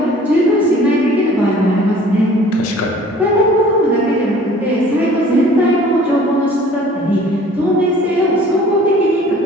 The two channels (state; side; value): normal; both; correlation 0.50